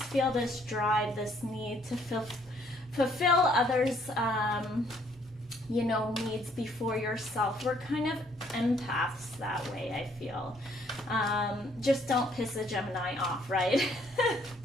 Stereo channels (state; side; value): normal; both; correlation 0.65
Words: feel this drive, this need to fulfill others' you know, needs before yourself. We're kind of empaths that way, I feel. Just don't piss a Gemini off, right?